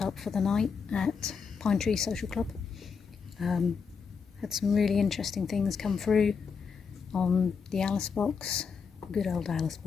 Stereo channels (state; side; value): quieter; right; 5.8 dB